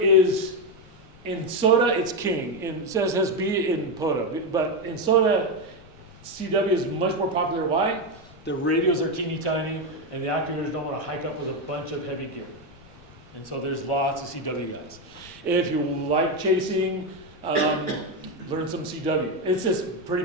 in SOTA, it's king. In SSB, in POTA. But in SOTA, CW is much more popular. Why? The radios are teeny tiny, and the activators don't want to hike up with a bunch of heavy gear. And so there's lots of CW guys. If you like chasing, learn some CW. It's just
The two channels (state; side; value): noise; left; rumble, 23 dB below the sound